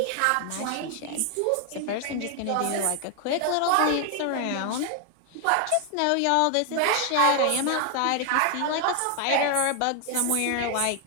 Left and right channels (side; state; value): both; different; correlation 0.00